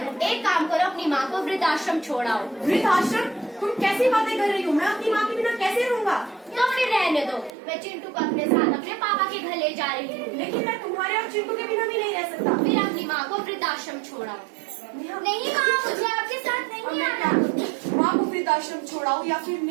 एक काम करो, अपनी माँ को वृद्धाश्रम छोड़ाओ। वृद्धाश्रम? तुम कैसी बातें कर रही हो? मैं अपनी माँ के बिना कैसे रहूंगा? तो फिर रहने दो, मैं चिंटू को अपने साथ अपने पापा के घर ले जा रही हूँ। लेकिन मैं तुम्हारे और चिंटू के बिना भी नहीं रह सकता। फिर अपनी माँ को वृद्धाश्रम छोड़ाओ। नहीं माँ, मुझे आपके साथ नहीं आना। माँ को वृद्धाश्रम छोड़ाओ या फिर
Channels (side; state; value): left; drops out; at 7.6 s